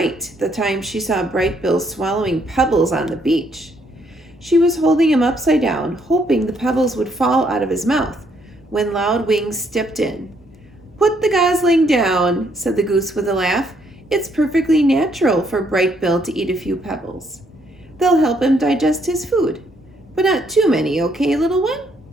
the time she saw Bright Bill swallowing pebbles on the beach. She was holding him upside down, hoping the pebbles would fall out of his mouth, when Loud Wings stepped in. "Put the gosling down," said the goose with a laugh. "It's perfectly natural for Bright Bill to eat a few pebbles. They'll help him digest his food. But not too many, okay, little one?"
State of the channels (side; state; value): both; normal; correlation 0.71